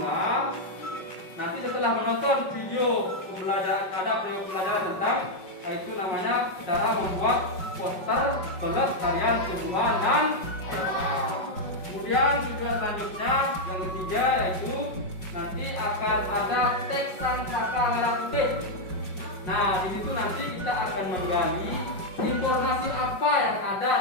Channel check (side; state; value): right; late; 5.3 ms